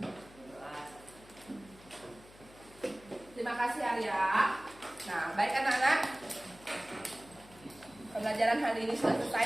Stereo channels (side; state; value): left; noise; hum, 22 dB below the sound